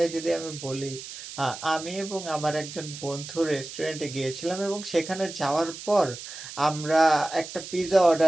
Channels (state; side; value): noise; right; hiss, 12 dB below the sound